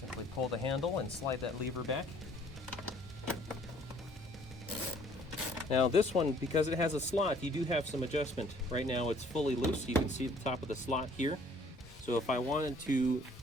pull the handle and slide that lever back. Now this one, because it has a slot, you do have some adjustment. Right now it's fully loose. You can see the top of the slot here. So if I wanted to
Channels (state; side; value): normal; both; correlation 0.58